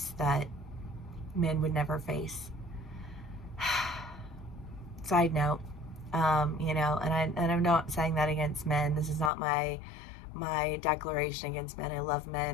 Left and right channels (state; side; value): drops out; right; at 9.3 s